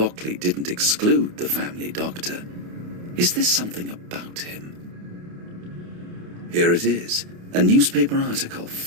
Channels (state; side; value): late; left; 28 ms